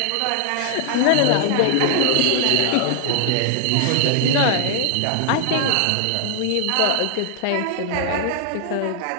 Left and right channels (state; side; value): different; both; correlation 0.00